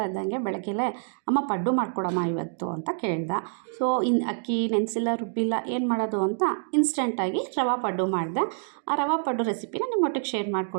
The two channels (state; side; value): silent; left; digital silence